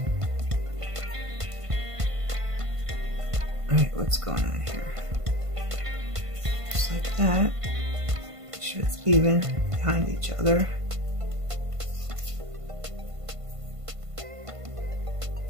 Alright, what's going on here? Just like that. Make sure it's even behind each other.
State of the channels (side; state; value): left; late; 1.5 ms